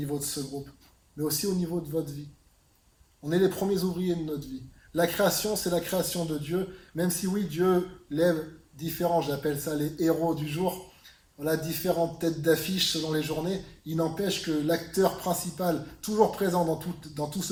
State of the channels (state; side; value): identical; both; correlation 1.00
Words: de ce groupe, mais aussi au niveau de votre vie. On est les premiers ouvriers de notre vie. La création, c'est la création de Dieu, même si oui, Dieu lève différents, j'appelle ça les héros du jour, voilà, différentes têtes d'affiche selon les journées, il n'empêche que l'acteur principal, toujours présent dans tout